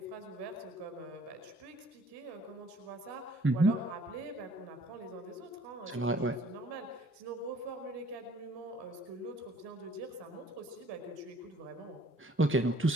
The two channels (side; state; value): both; normal; correlation 0.57